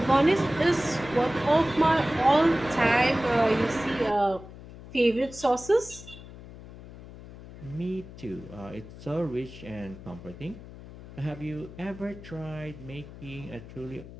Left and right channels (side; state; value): left; noise; hum, 16 dB below the sound